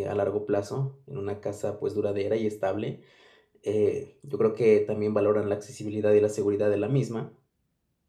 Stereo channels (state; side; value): identical; both; correlation 1.00